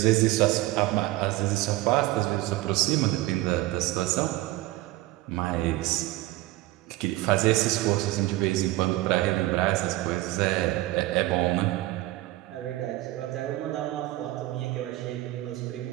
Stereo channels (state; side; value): quieter; left; 17.5 dB